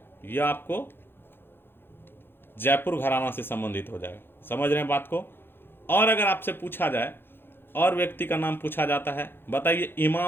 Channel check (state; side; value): late; right; 0.10 ms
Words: यह आपको जयपुर घराना से संबंधित हो जाएगा। समझ रहे हैं बात को? और अगर आपसे पूछा जाए और व्यक्ति का नाम पूछा जाता है, बताइए